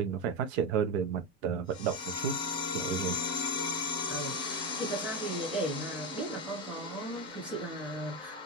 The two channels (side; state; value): both; normal; correlation 0.13